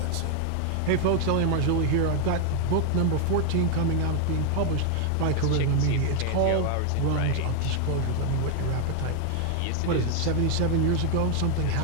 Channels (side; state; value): both; different; correlation 0.00